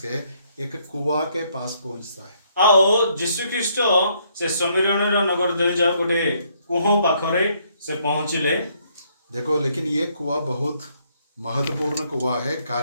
के एक कुआं के पास पहुंचता है। आओ यीशु ख्रीष्ट से समिरण नगर दे जाओ गोटे कुहो पाखरे से पहुंचिले। देखो, लेकिन ये कुआं बहुत महत्वपूर्ण कुआं है।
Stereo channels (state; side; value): inverted; both; correlation -0.69